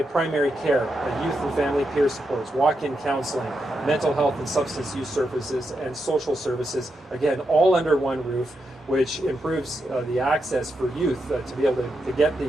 primary care, youth and family peer supports, walk-in counseling, mental health and substance use services, and social services, again, all under one roof, which improves the access for youth to be able to get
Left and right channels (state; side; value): normal; both; correlation 0.85